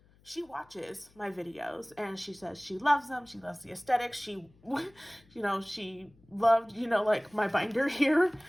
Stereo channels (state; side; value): noise; left; hum, 30 dB below the sound